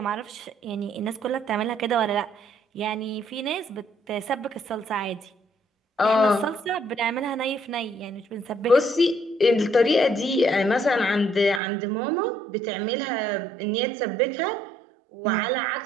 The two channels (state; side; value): drops out; left; at 11.6 s